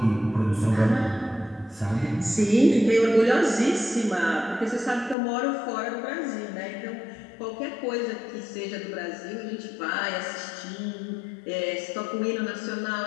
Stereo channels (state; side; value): drops out; right; at 5.2 s